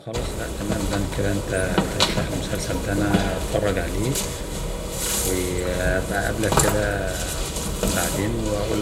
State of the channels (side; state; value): both; identical; correlation 1.00